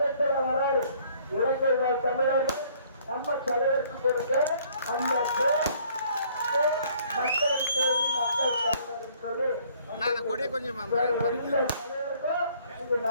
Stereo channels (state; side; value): inverted; both; correlation -0.60